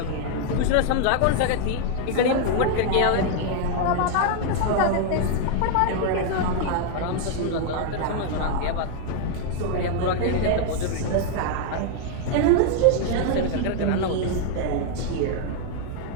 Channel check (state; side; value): different; both; correlation 0.00